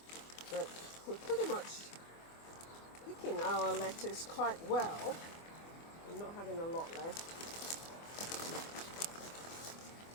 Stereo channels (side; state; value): right; late; 24 ms